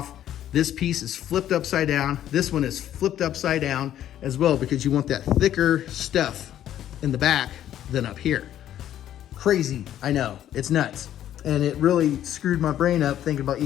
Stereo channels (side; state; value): right; quieter; 11.5 dB